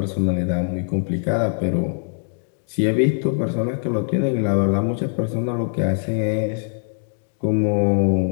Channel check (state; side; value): silent; right; digital silence